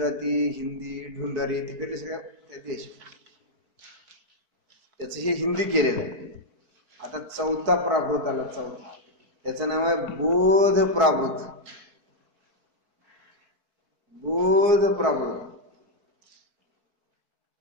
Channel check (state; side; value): late; left; 4.5 ms